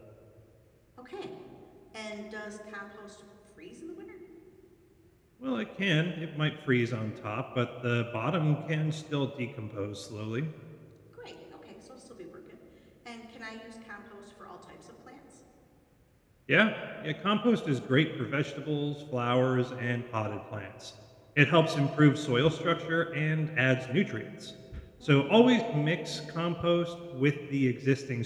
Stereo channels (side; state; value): both; identical; correlation 1.00